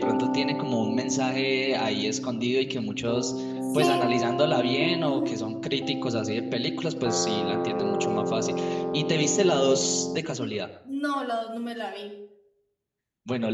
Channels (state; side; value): identical; both; correlation 1.00